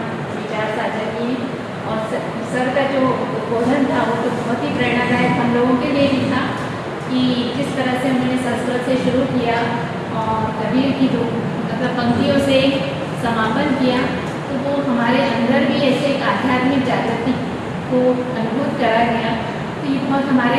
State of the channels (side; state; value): both; identical; correlation 1.00